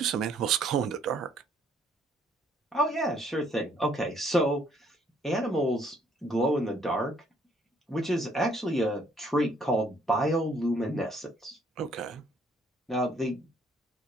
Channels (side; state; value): both; normal; correlation 0.65